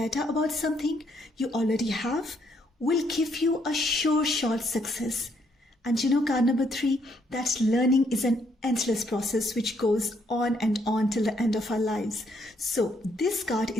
about something you already have will give you a sure shot success. And you know, card number 3, that learning is an endless process which goes on and on till the end of our lives. So this card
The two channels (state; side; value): normal; both; correlation 0.71